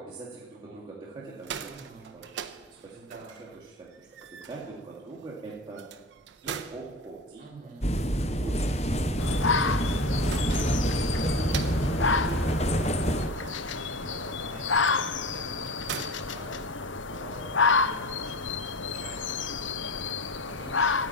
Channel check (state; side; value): normal; both; correlation 0.29